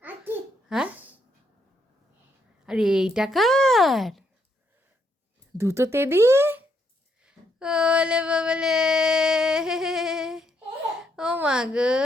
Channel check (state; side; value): normal; both; correlation 0.75